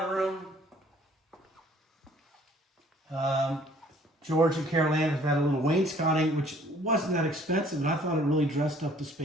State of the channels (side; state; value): both; normal; correlation 0.57